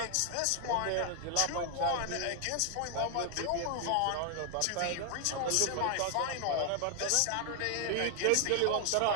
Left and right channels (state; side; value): different; both; correlation 0.00